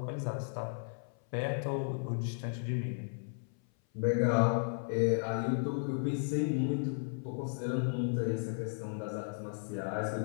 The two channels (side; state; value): right; silent; 55 dB below the other